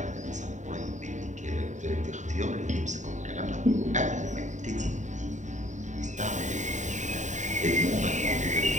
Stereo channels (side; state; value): left; late; 0.35 ms